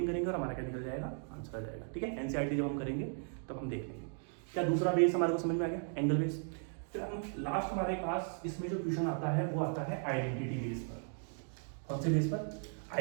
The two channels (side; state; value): left; silent; 53 dB below the other